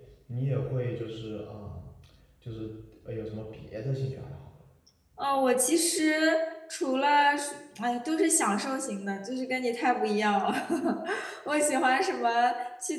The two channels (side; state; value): both; identical; correlation 1.00